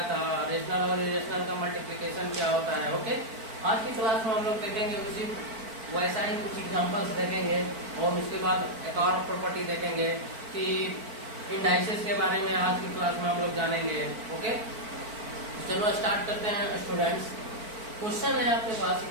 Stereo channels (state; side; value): late; left; 4.5 ms